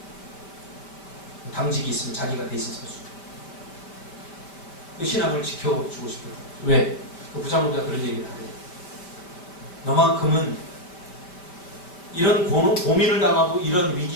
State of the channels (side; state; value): right; late; 5.2 ms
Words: 당직이 있으면 자기가 대신 서주. 그 신앙을 지켜주고 싶어요. 왜? 그 부장검사가 그런 얘기를 하래요. 너만큼은 이런 고민을 당하고 이런